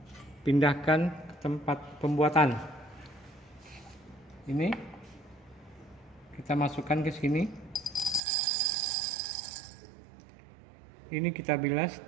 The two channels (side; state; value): left; drops out; at 8.2 s